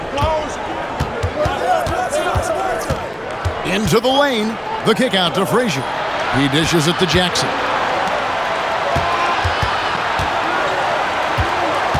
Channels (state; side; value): identical; both; correlation 1.00